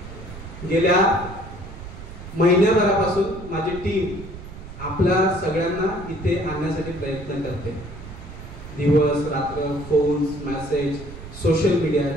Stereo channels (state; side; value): noise; right; rumble, 13 dB below the sound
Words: गेल्या महिन्याभरापासून माझी टीम आपल्या सगळ्यांना इथे आणण्यासाठी प्रयत्न करते. दिवस रात्र, फोन्स, मेसेज, सोशल मीडिया